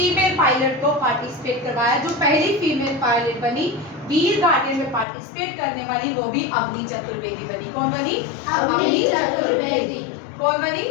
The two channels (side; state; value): right; drops out; at 5.1 s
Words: पायलट को पार्टिसिपेट करवाया। जो पहली फीमेल पायलट बनी वीर गार्डियन में पार्टिसिपेट करने वाली, वो भी अवनी चतुर्वेदी बनी। कौन बनी? अवनी चतुर्वेदी। कौन बनी?